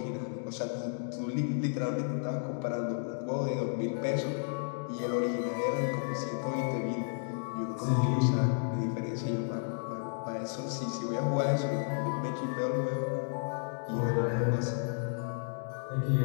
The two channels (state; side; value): silent; right; digital silence